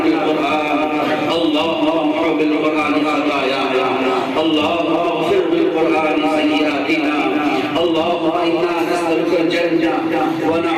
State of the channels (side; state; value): both; identical; correlation 1.00